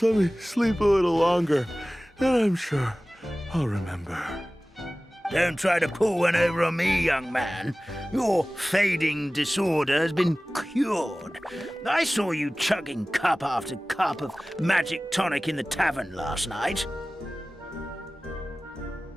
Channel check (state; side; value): normal; both; correlation 0.97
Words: let me sleep a little longer, and I'm sure I'll remember. Don't try to pull one over on me, young man. Your fading disorder has been cured. I saw you chugging cup after cup of magic tonic in the tavern last night.